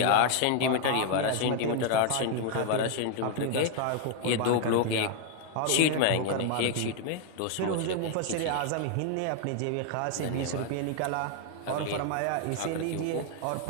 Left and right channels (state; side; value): different; both; correlation 0.00